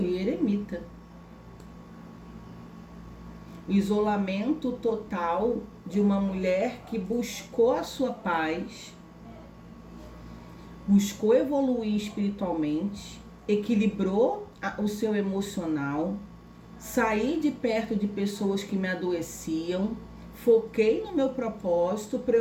eremita. O isolamento total de uma mulher que buscou a sua paz, buscou evoluir espiritualmente, equilibrou o seu emocional, saí de perto de pessoas que me adoeciam, foquei no meu propósito para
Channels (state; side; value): identical; both; correlation 1.00